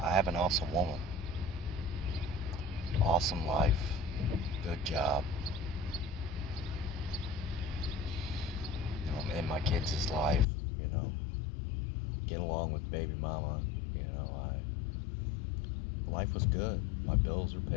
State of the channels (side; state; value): right; drops out; at 10.5 s